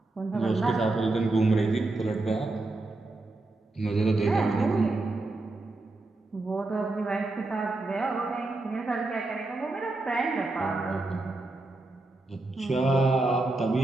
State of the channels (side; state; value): left; quieter; 3.1 dB